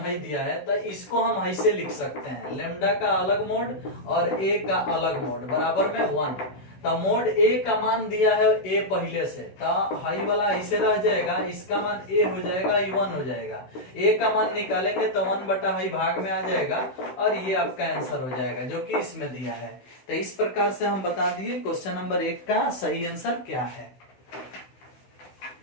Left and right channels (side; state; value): right; late; 16 ms